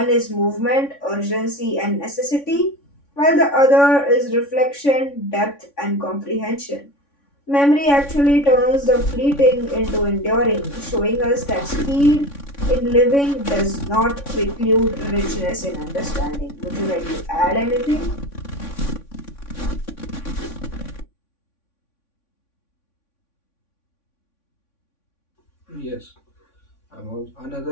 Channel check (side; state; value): right; late; 3.6 ms